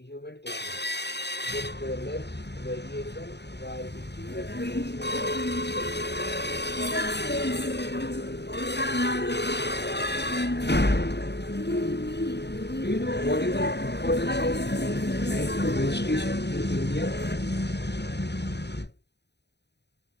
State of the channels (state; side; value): late; right; 0.50 ms